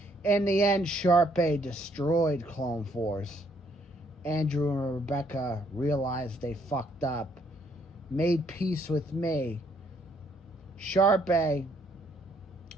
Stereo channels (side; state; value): both; normal; correlation 0.68